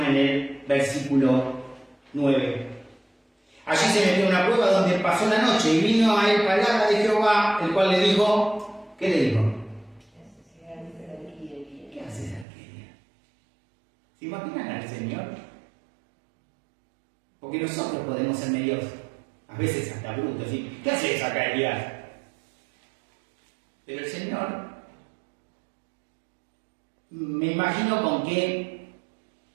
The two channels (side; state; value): left; drops out; at 12.5 s